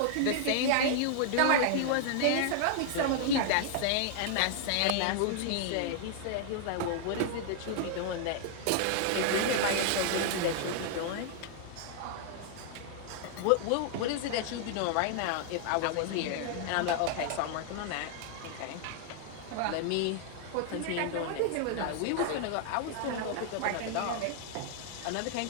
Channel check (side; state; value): both; different; correlation 0.00